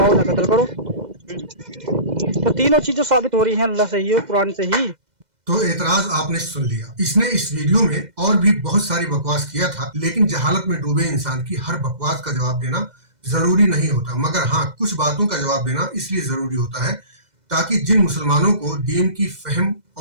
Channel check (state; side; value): late; left; 2.0 ms